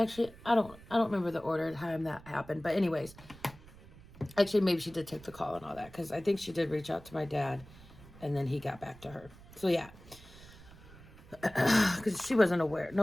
I don't remember the order of time that happened, but anyways, actually maybe she did take the call and all that, because I think she did reach out to my dad, and then he got back to her. So yeah, because she wasn't aware,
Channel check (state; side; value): noise; right; rumble, 20 dB below the sound